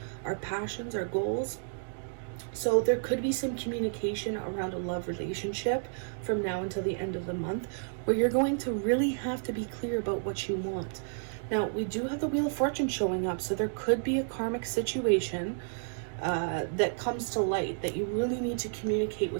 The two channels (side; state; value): left; silent; digital silence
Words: our passions, our goals. So there could be some communication around a love relationship from now until the end of the month where you're going to really have to be clear about what you want. Now, we do have the Wheel of Fortune showing up, so there could be a karmic situation that comes to light that you really need to communicate